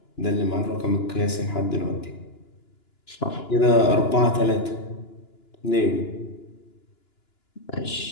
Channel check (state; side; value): late; right; 2.9 ms